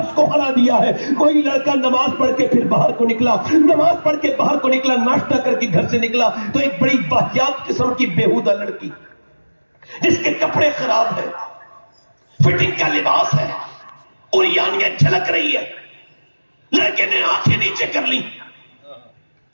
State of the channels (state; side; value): inverted; both; correlation -1.00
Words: کو ہرا دیا ہے۔ کوئی لڑکا نماز پڑھ کے پھر باہر کو نکلا، نماز پڑھ کے باہر کو نکلا، ناشتہ کر کے گھر سے نکلا تو ایک بڑی واہیات قسم کی بیہودہ لڑکی جس کے کپڑے خراب ہیں، فٹنگ کا لباس ہے، اور یانیاں جھلک رہی ہے، لڑکے نے آنکھیں نیچے کر لی۔